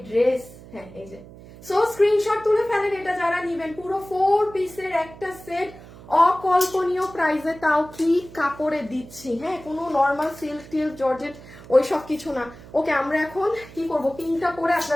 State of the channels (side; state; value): right; noise; hum, 18 dB below the sound